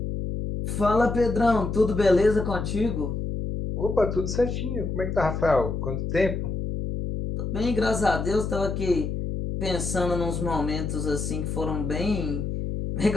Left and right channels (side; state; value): left; noise; hum, 3 dB below the sound